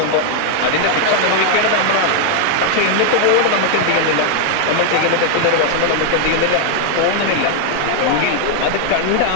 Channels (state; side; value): different; both; correlation 0.00